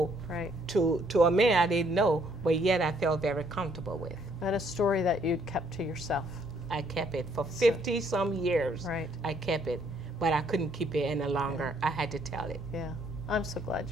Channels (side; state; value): both; normal; correlation 0.67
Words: to a man I didn't know, but yet I felt very comfortable with. And a story that you'd kept to yourself. I kept it for 50-some years. Right. I kept it, but I couldn't keep it any longer. I had to tell it. Yeah. I'm so glad